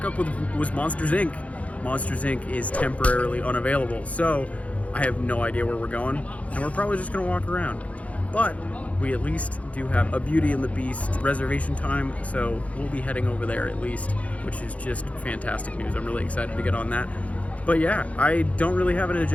was Monsters Inc. Monsters Inc. is temporarily unavailable, so I have no idea where we're going, and we're probably just going to walk around. But we at least do have a Beauty and the Beast reservation time, so we'll be heading over there at least, which is just fantastic news. I'm really excited to get on that. But yeah, I don't really have an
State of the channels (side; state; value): right; late; 0.066 ms